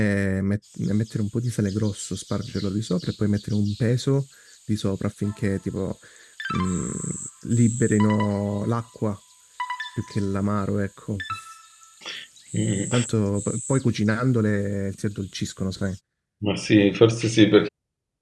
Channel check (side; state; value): both; identical; correlation 1.00